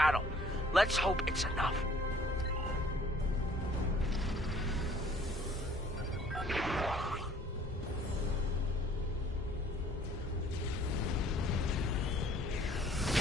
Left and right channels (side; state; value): both; normal; correlation 0.57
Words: Let's hope it's enough.